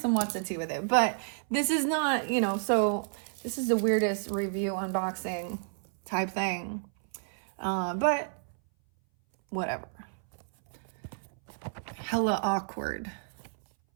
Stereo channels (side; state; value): left; silent; 57 dB below the other